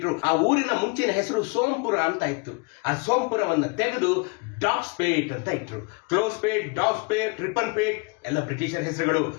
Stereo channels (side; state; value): right; quieter; 30.5 dB